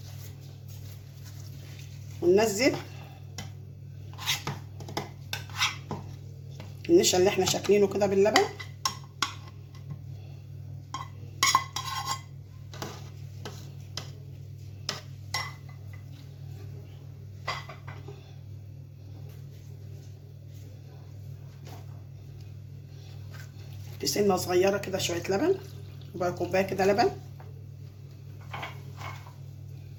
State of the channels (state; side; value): identical; both; correlation 1.00